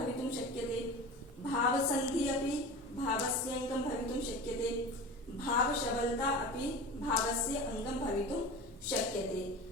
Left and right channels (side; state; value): both; normal; correlation 0.33